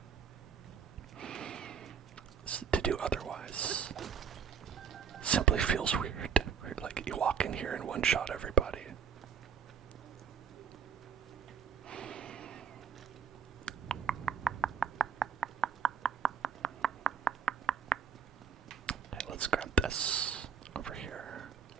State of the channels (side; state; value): left; quieter; 6.7 dB